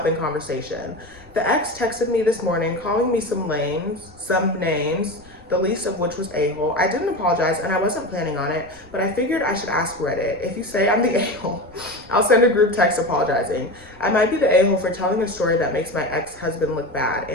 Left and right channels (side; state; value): left; noise; rumble, 26 dB below the sound